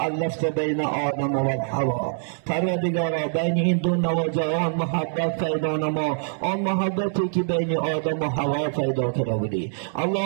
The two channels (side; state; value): left; silent; digital silence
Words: بین آدم و حوا. پروردگارا بین این دو نوجوان محبت پیدا نما، آن محبتی که بین آدم و حوا پیدا کرده بودی.